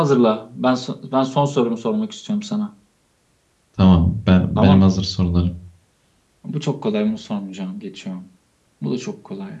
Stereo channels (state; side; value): identical; both; correlation 1.00